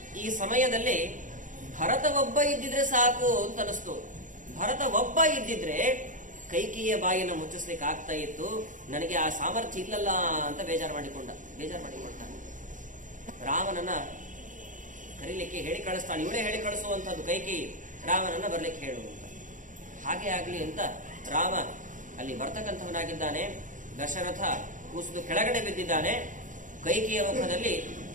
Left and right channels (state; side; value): late; left; 0.37 ms